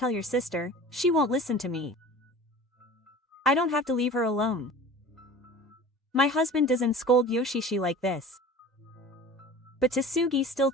your sister, she won't listen to me. I don't have to leave her alone." My husband doesn't scold Yoshishi like this. But Tasuki still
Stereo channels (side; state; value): both; normal; correlation 0.40